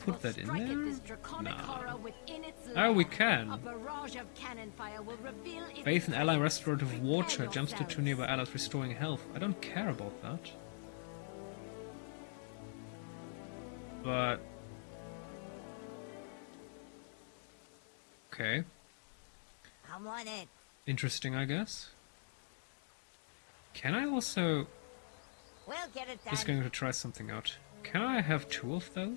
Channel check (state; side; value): silent; right; digital silence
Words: put will that in strike at there? this draconic horror within its Oh, we lair. can. A barrage of cannon fire will reveal its Bathe in ally presence. restorative water. Prepare Jumps to 2 yourselves. nearby allies, restoring health. I don't care about that. But... okay. I'm on it. Interesting, I guess. Can I also... We'll get it done. just going to try something out. Can I have 2 of